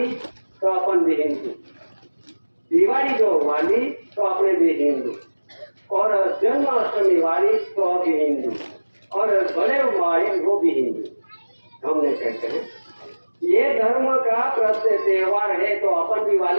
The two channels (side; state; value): both; inverted; correlation -1.00